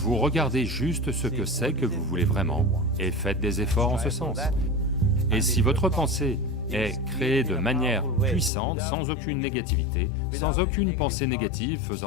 regardez juste ce que c'est que vous voulez vraiment et faites des efforts en ce sens. Et si votre pensée est créée de manière puissante, sans aucune négativité, sans aucune pensée négative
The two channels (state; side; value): drops out; right; at 8.5 s